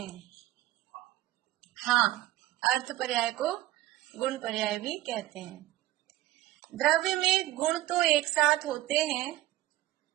हाँ, अर्थ पर्याय को गुण पर्याय भी कहते हैं। द्रव्य में गुण तो एक साथ होते हैं,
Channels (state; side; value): quieter; left; 16.0 dB